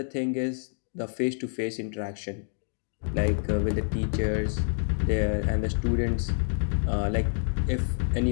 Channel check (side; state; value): right; silent; digital silence